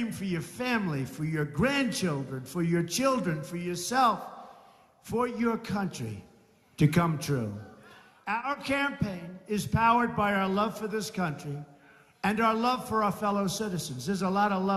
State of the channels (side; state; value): both; identical; correlation 1.00